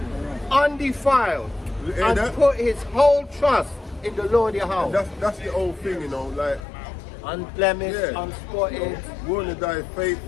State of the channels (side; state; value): right; drops out; at 6.6 s